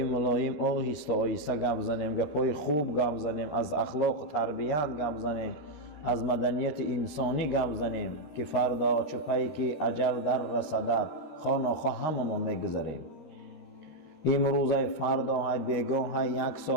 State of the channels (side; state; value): right; late; 13 ms